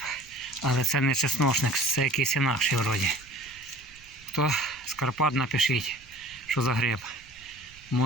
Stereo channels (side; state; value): right; noise; rumble, 25 dB below the sound